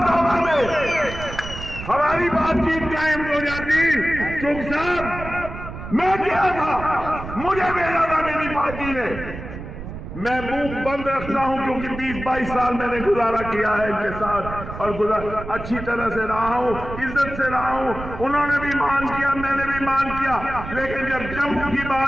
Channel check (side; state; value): right; noise; rumble, 10 dB below the sound